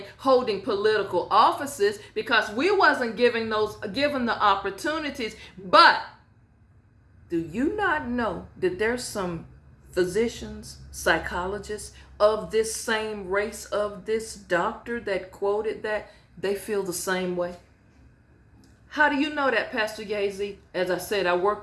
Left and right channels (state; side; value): identical; both; correlation 1.00